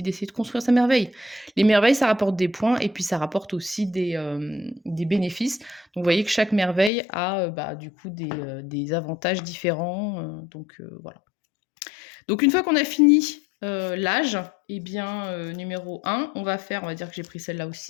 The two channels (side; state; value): right; drops out; at 6.9 s